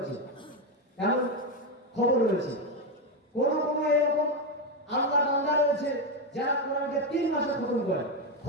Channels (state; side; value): normal; both; correlation 0.09